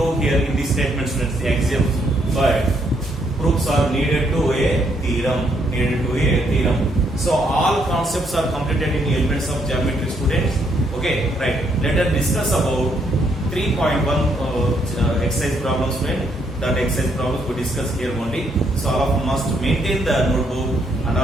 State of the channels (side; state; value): both; normal; correlation 0.72